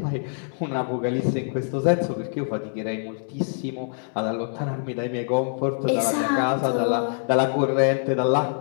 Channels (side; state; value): right; silent; digital silence